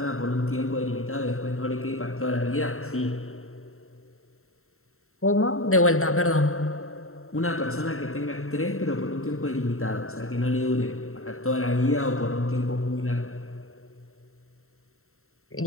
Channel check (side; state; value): right; late; 0.63 ms